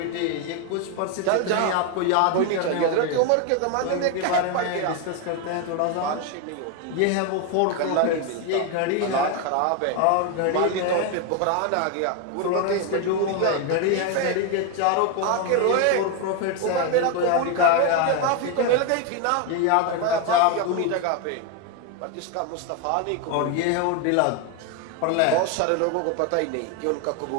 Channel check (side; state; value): both; different; correlation 0.02